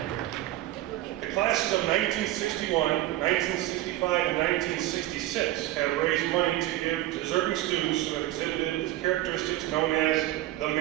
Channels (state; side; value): quieter; left; 15.2 dB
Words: The classes of 1961, 1965, and 1966 have raised money to give deserving students who have exhibited the characteristics known as the